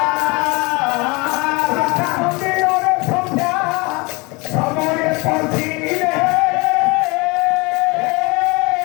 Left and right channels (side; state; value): right; quieter; 26.7 dB